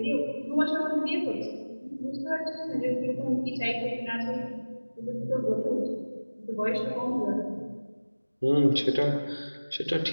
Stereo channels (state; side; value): inverted; both; correlation -1.00